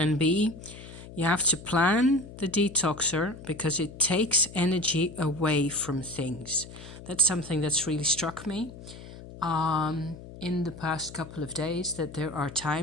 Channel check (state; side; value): noise; left; hum, 15 dB below the sound